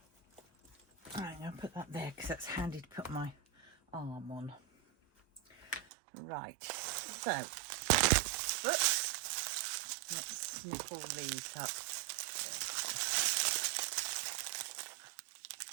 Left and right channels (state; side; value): drops out; left; at 5.9 s